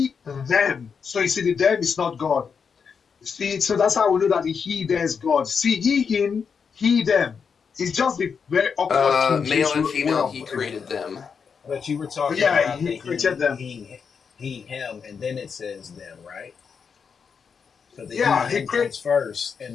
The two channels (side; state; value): right; quieter; 6.2 dB